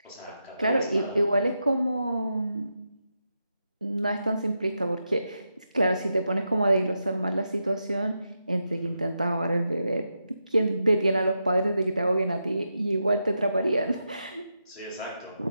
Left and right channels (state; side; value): inverted; both; correlation -0.86